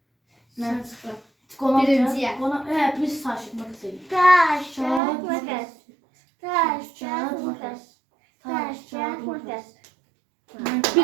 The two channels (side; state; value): left; drops out; at 5.0 s